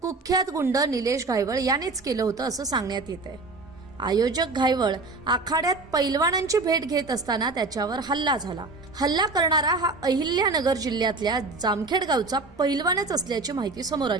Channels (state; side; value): quieter; left; 3.6 dB